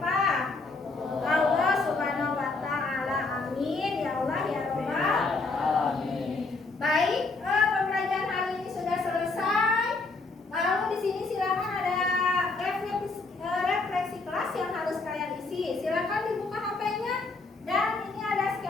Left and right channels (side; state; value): right; quieter; 3.7 dB